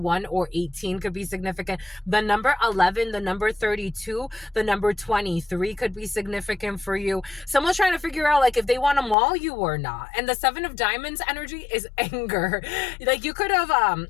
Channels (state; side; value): drops out; right; at 9.2 s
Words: or 18 could be significant, the number 11, the number 32, the number 23 could be significant for you. Someone's trying to figure out like if they want to maul you or not. And the 7 of Diamonds energy is anger. Like you could have,